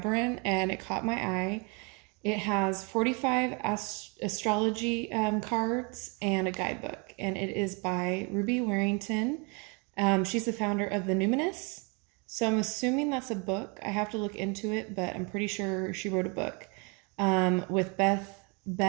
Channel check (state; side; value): quieter; left; 32.5 dB